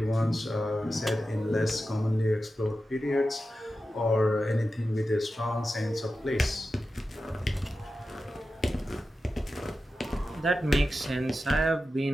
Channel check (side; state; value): both; normal; correlation 0.92